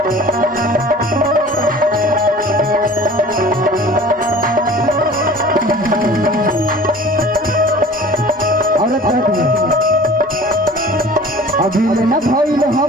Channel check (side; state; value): both; normal; correlation 0.44